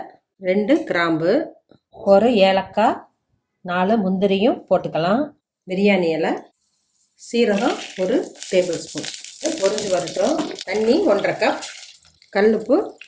2 கிராம்பு, ஒரு ஏலக்காய், 4 முந்திரியும் போட்டுக்கலாம். பிரியாணி இலை, சீரகம் 1 டேபிள் ஸ்பூன். பொரிஞ்சு வரட்டும். தண்ணி 1.5 கப், கல்லுப்பு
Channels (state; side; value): identical; both; correlation 1.00